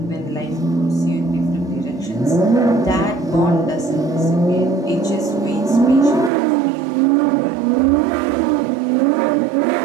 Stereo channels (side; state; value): left; drops out; at 6.3 s